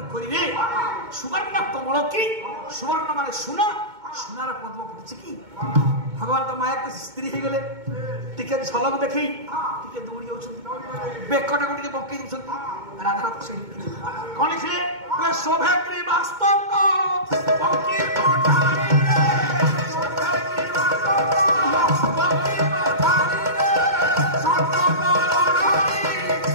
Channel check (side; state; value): left; late; 2.2 ms